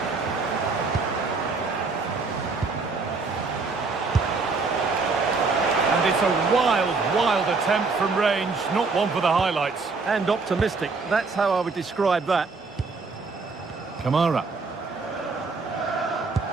And it's a wild attempt from range, not one for the highlights. And optimistic. That's how I would describe that. Kamara.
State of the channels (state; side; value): quieter; left; 4.2 dB